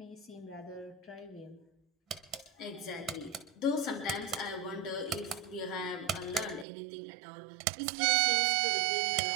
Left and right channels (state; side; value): drops out; left; at 6.7 s